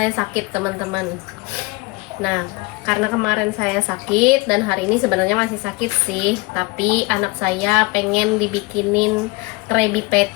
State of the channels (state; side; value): quieter; right; 24.8 dB